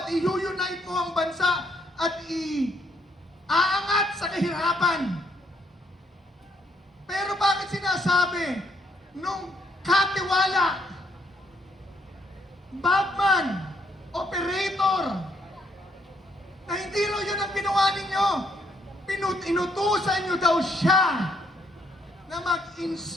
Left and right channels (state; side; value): normal; both; correlation 0.71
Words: i-unite mo ang bansa at aangat sa kahirapan. Pero bakit sinasabi nung katiwala, bagman, operator, na hindi raw yun ang ginawa ninyo? Inutusan nyo daw siya na